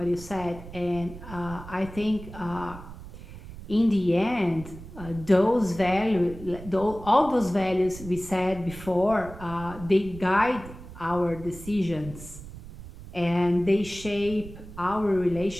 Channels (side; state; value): right; noise; rumble, 14 dB below the sound